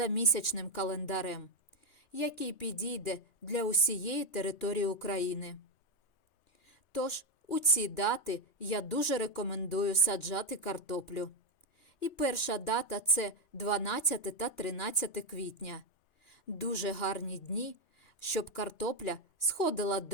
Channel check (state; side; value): late; right; 2.9 ms